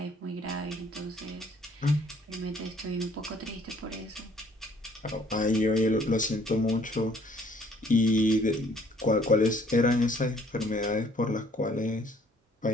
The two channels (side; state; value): both; normal; correlation 0.60